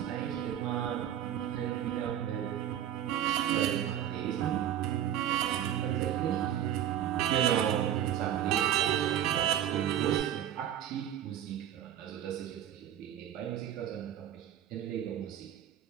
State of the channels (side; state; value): left; quieter; 10.8 dB